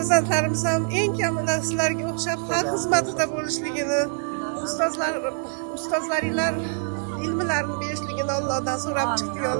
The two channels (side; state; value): left; silent; 61 dB below the other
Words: ham eng kamida sizlarga o'xshab xalq xizmatida bo'lishligini, ustozlaringlar ilmlarini berishligini Allohdan so'rab chiqdik.